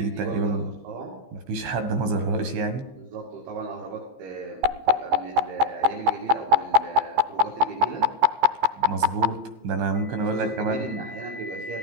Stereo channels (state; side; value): late; left; 15 ms